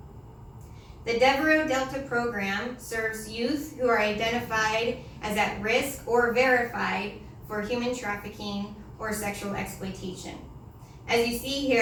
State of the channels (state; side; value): identical; both; correlation 1.00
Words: The Devereux Delta program serves youth who are identified as at risk or verified for human trafficking or sexual exploitation. As you see